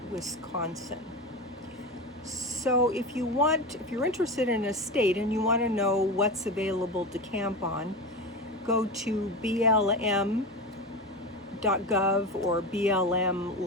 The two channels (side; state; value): both; normal; correlation 0.23